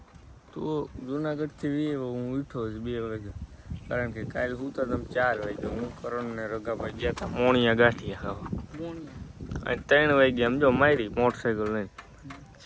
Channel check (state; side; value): identical; both; correlation 1.00